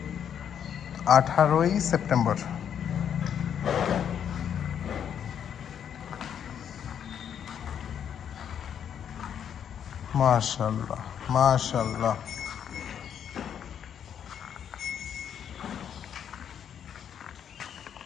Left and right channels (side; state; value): right; quieter; 8.7 dB